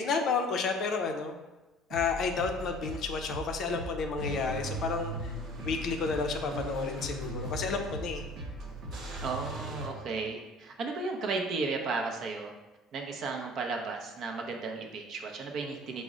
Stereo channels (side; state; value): both; normal; correlation 0.47